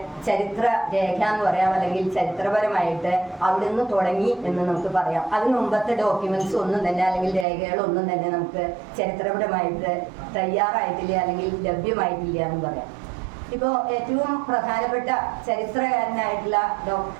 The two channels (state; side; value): drops out; left; at 7.5 s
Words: ചരിത്ര രേഖ എന്ന് പറയാം, അല്ലെങ്കിൽ ചരിത്രപരമായിട്ട് അവിടുന്ന് തുടങ്ങി എന്ന് നമുക്ക് പറയാം. അതിന് മുമ്പത്തെ ഡോക്യുമെന്റ്സ് ഒന്നും തന്നെ അല്ലെങ്കിൽ രേഖകളൊന്നും തന്നെ നമുക്ക് ചരിത്രപരമായിട്ട് തയ്യാറായിട്ടില്ല അല്ലെങ്കിൽ ലഭ്യമായിട്ടില്ല എന്ന് പറയാം. ഇപ്പോൾ ഏറ്റവും പ്രധാനപ്പെട്ട ചരിത്രകാരനായിട്ടുള്ള